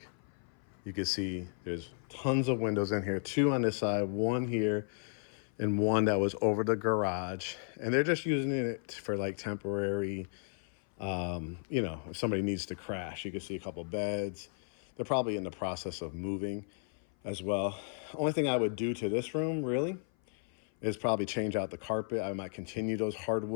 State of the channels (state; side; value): silent; right; 55 dB below the other